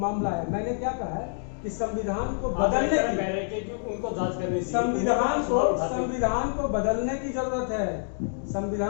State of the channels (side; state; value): right; silent; digital silence